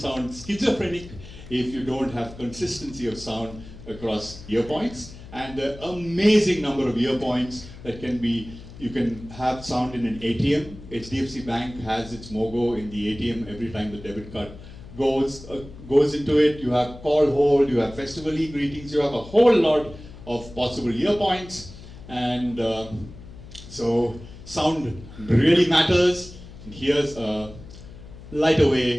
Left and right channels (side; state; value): left; noise; hum, 16 dB below the sound